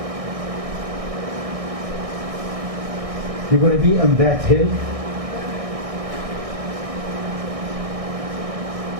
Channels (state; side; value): late; left; 1.6 ms